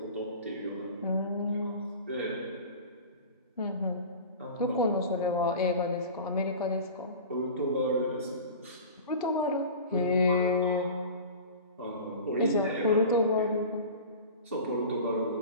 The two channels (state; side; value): inverted; both; correlation -0.36